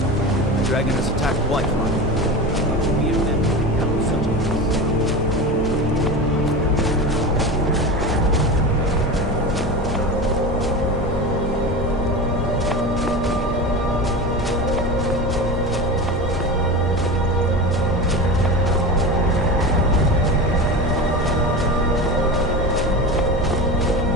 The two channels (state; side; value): normal; both; correlation 0.26